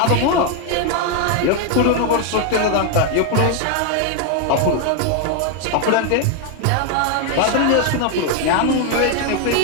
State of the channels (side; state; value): both; different; correlation 0.01